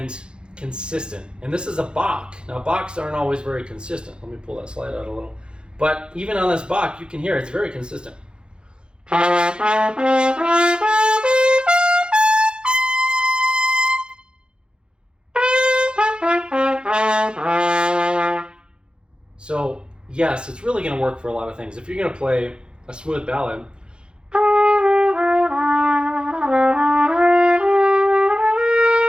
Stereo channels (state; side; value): late; left; 0.051 ms